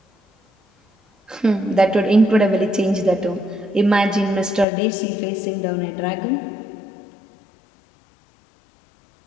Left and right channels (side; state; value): right; drops out; at 4.7 s